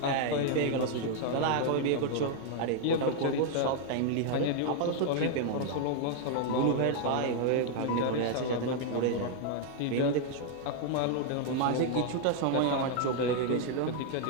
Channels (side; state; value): both; different; correlation 0.00